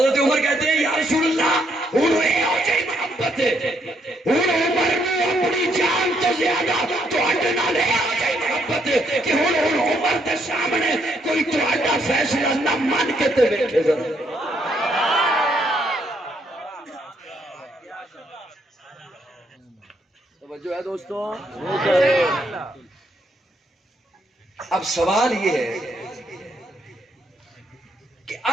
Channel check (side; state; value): both; normal; correlation 0.73